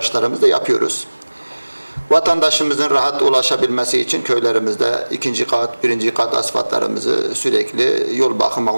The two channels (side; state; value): both; inverted; correlation -1.00